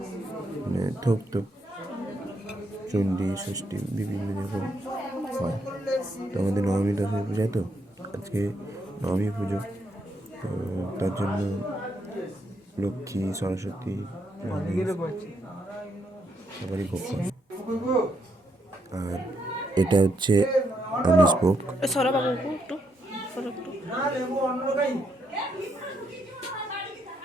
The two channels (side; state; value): both; normal; correlation 0.77